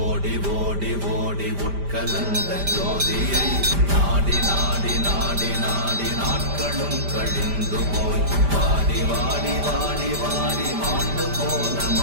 ஓடி ஓடி உட்கலந்த ஜோதியை நாடி நாடி நாடி நாடி நாட்களும் கழிந்து போய் வாடி வாடி வாடி வாடி மாண்டு போன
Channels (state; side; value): late; left; 5.0 ms